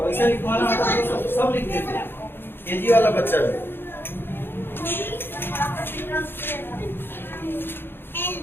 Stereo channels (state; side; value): late; right; 0.10 ms